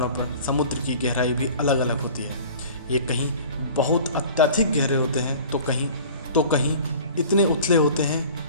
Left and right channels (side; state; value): both; inverted; correlation -0.44